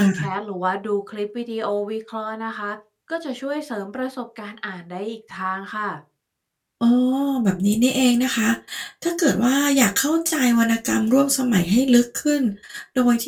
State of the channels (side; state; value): both; identical; correlation 1.00